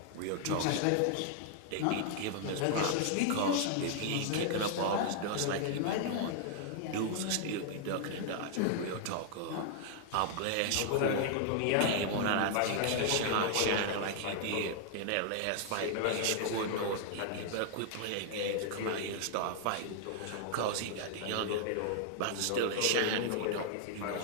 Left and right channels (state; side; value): different; both; correlation 0.00